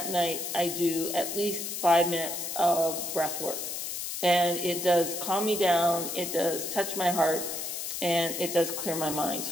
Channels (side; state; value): left; noise; hiss, 5 dB below the sound